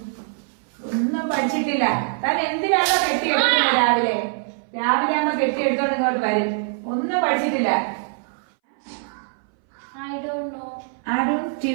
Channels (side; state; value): left; silent; 61 dB below the other